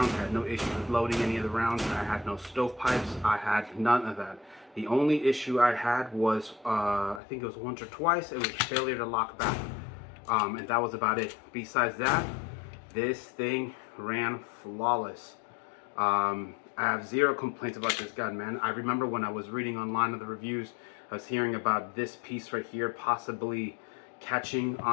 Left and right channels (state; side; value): drops out; right; at 7.2 s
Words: I had no issues with loading any of the rounds. I had no stovepipes. I had none of that. The only issue I had was, I think it was once or twice, it was failure to lock back. And that was about it. Besides that, this thing ran flawless. I have zero complaints about this gun, man. I remember when I was reading online of the reviews, I was hearing about this piece right here possibly catching